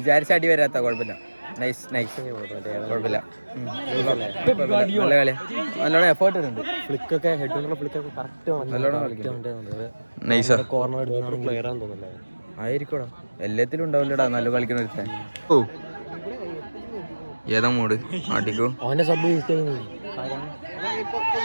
അടി വരാത്ത. കുഴപ്പമില്ല, നൈസ് കുഴപ്പമില്ല. നല്ല കളി, നല്ലോണം എഫേർട്ട് ഉണ്ട്. ഫ്ലിക്കൊക്കെ ഹെഡ് ഫ്ലിക്കൊക്കെ കറക്റ്റ് നൈസാ കോർണർ പ്ലെയർ ആണെന്ന് തോന്നുന്നില്ല. ആയിരിക്കോടാ, എല്ലാത്തിലും ഉണ്ടാവില്ലടാ നല്ല കളിക്കുന്ന ഒരുത്തൻ. ഓ ഏതാ മൂട് ആട്ടിക്കോ. അവന്റെ സബ് യൂസ് ചെയ്യുന്നു.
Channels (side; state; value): both; inverted; correlation -1.00